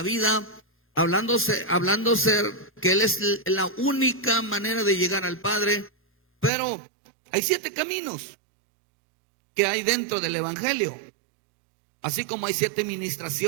vida, hablándose que Él es la única manera de llegar al Padre. Pero hay 7 caminos que hay dentro del evangelio, así como hay 7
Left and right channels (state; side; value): drops out; left; at 6.5 s